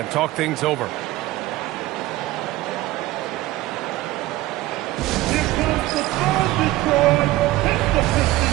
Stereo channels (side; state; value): left; quieter; 17.2 dB